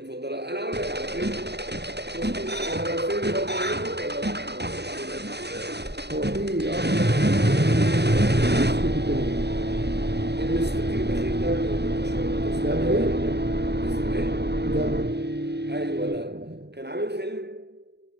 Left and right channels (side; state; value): left; late; 0.49 ms